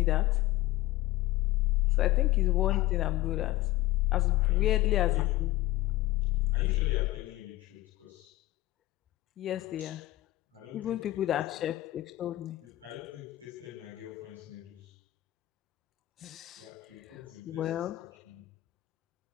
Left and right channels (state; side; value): quieter; right; 17.3 dB